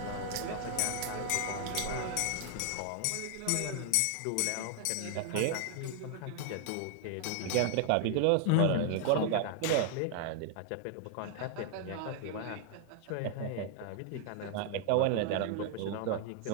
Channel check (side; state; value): both; different; correlation 0.00